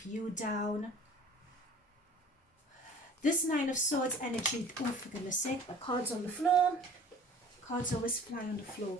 you down. This 9 of Swords energy, oh for goodness sake, the cards on the floor. Cards always fly on the floor.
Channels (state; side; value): normal; both; correlation 0.47